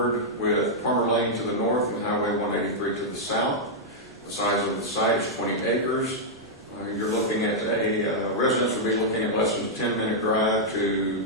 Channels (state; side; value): normal; both; correlation -0.06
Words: with Palmer Lane to the north and Highway 183 to the south. The size of the site is 20 acres. You're looking at residents will be looking at less than a 10-minute drive to